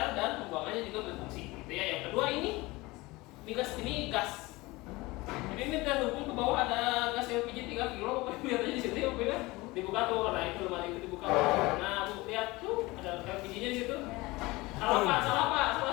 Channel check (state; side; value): quieter; right; 21.8 dB